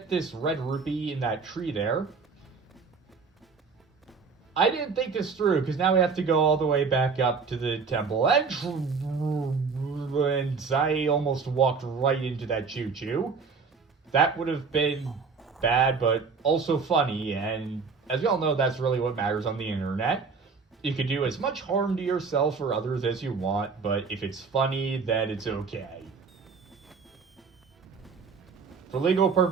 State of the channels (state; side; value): quieter; left; 5.0 dB